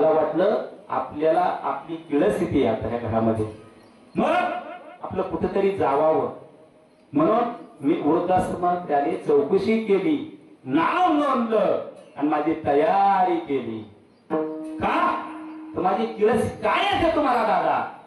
वाटलं आपल्याला आपली किळस्थिती आहे आता ह्या घरामध्ये, मग आपलं कुठेतरी जावावं म्हणून मी वृद्धाश्रमात त्याने चौकशी केली, नाव नोंदलं आणि माझी तयारी केली. का तर माझी किळस काय आहे तुम्हाला दादा?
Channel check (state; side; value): identical; both; correlation 1.00